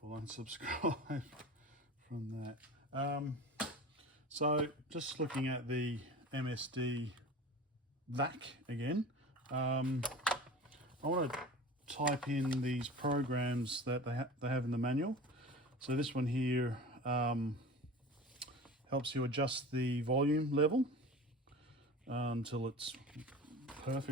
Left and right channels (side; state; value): both; normal; correlation 0.36